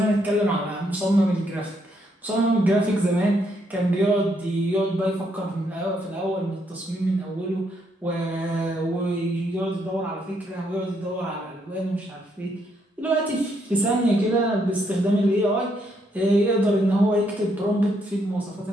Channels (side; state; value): both; normal; correlation 0.74